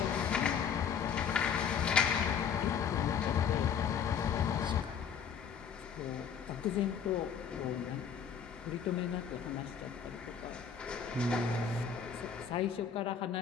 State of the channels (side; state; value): right; quieter; 7.2 dB